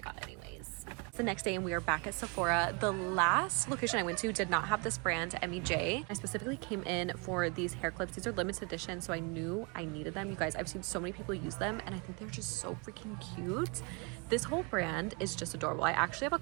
got anyways. It's the next day and we are back at Sephora. The last location I went to did not have this brand, MEJ. I specifically came in for these hair clips. These are limited edition, so I knew I needed them. You guys, I've seen so many people use them and I think they're just so freaking cute. This whole brand is just adorable. I actually have a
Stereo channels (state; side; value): quieter; left; 31.3 dB